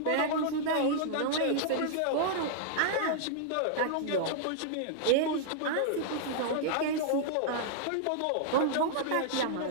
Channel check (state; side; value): different; both; correlation -0.01